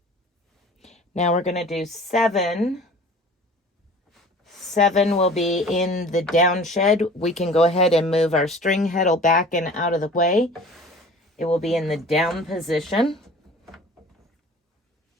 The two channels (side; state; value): both; normal; correlation 0.44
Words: Now we're going to do 7. 7 will be in the down shed. We can go ahead and move our string heddle back and out of the way. It will be in the down position.